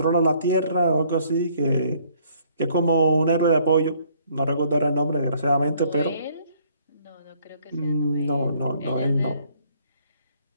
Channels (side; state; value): both; inverted; correlation -0.64